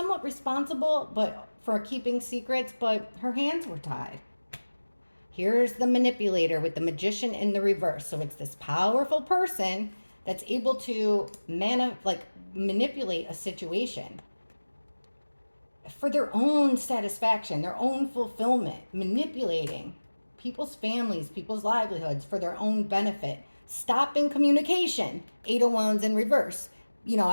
responsible for keeping secrets, but her hands were tied. Here's the manipulator with the magician in the reverse. So it's this powerful person that's able to manipulate a situation for their own satisfaction, their own fulfillment, manipulating people's families, people's livelihoods for their own benefit, stopping communication. 8 of Wands in reverse.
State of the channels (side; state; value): both; inverted; correlation -1.00